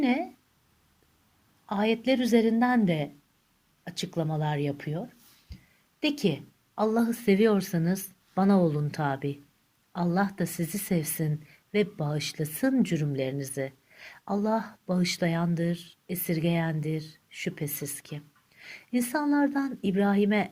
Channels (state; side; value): identical; both; correlation 1.00